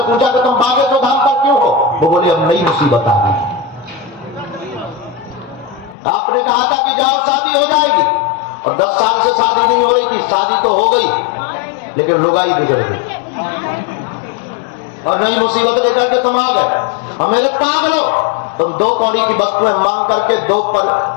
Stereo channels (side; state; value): right; drops out; at 6.0 s